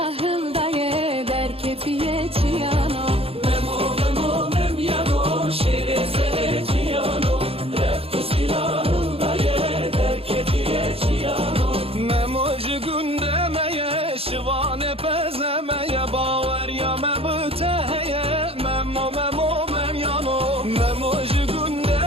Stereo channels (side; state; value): left; late; 0.28 ms